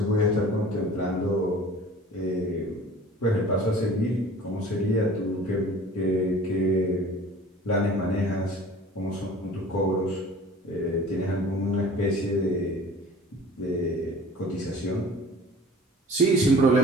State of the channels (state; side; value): normal; both; correlation 0.45